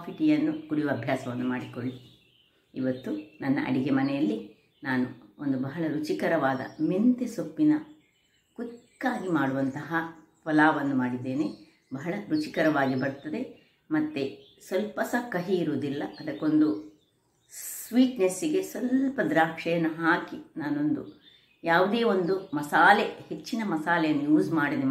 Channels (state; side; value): identical; both; correlation 1.00